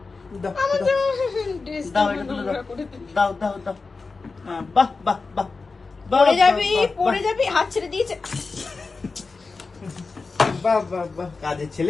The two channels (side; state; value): right; quieter; 4.2 dB